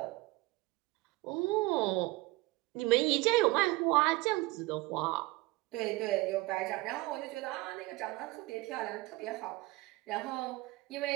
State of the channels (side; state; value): left; quieter; 21.4 dB